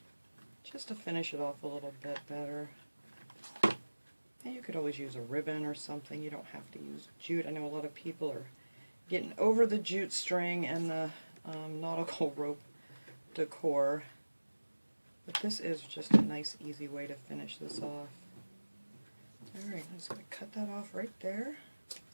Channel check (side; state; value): both; inverted; correlation -1.00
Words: Just to finish it off a little bit better. And you could always use a ribbon or something. You don't have to use jute. I know a lot of people are getting over the jute string and the nautical rope decor. But this is just a nice, easy way to finish this off. Alright, I'm just going to cut that off right there.